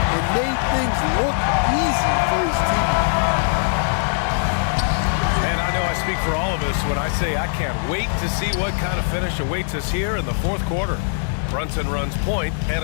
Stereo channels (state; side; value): silent; right; 65 dB below the other